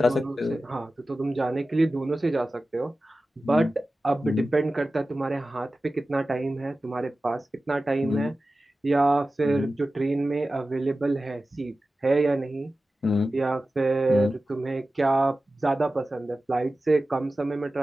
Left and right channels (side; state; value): both; normal; correlation 0.95